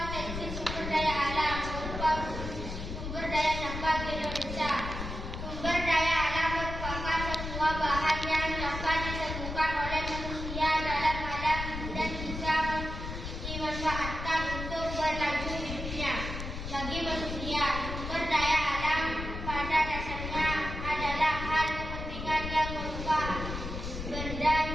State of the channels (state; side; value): noise; left; rumble, 6 dB below the sound